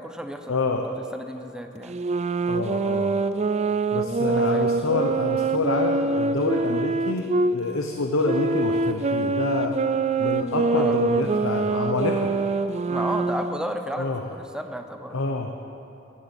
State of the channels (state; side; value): normal; both; correlation 0.30